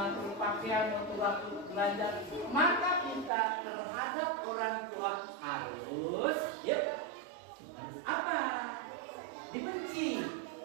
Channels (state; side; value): drops out; left; at 3.3 s